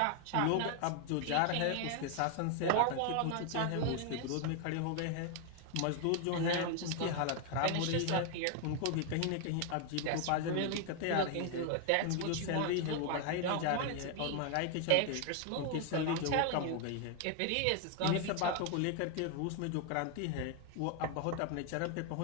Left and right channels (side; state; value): both; different; correlation 0.00